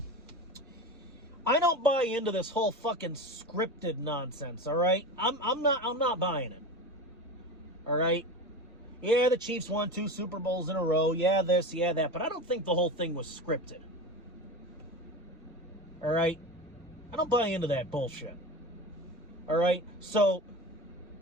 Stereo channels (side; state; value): both; normal; correlation 0.28